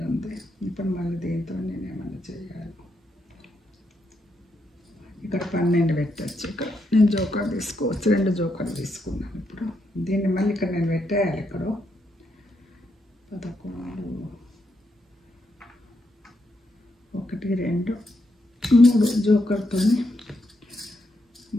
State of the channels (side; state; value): both; normal; correlation 0.80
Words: ఉంది ఇప్పుడు మళ్ళీ దీంతో నేను ఏమైనా చేయాలి ఇక్కడ 12 పెట్టచ్చు ఇక్కడ నేను జోకర్ తీసుకోవచ్చు, 2 జోకర్ తీసుకున్నాను. ఇప్పుడు దీన్ని మళ్ళీ ఇక్కడ నేను పెట్టేయాలి. ఇక్కడ 11 1 2 3 జోకర్తో